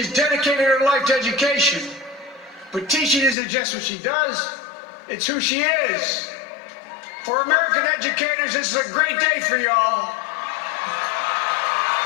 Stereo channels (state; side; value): drops out; right; at 3.4 s